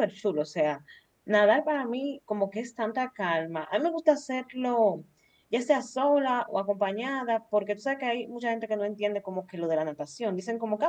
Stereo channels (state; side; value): identical; both; correlation 1.00